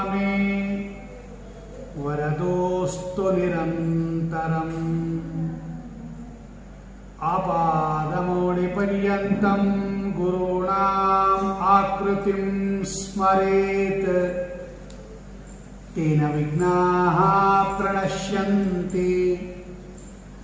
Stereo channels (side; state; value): both; identical; correlation 1.00